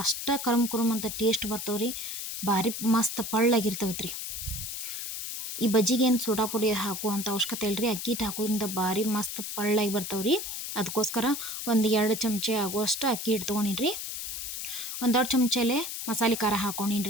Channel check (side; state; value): left; noise; hiss, 6 dB below the sound